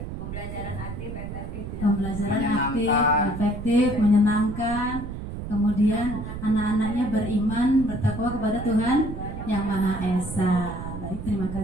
Pembelajaran aktif, efektif. Pembelajaran aktif, efektif, menyenangkan. Kemudian anak-anaknya beriman, bertakwa kepada Tuhan Yang Maha Esa. Baik, terima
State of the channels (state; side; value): noise; right; rumble, 8 dB below the sound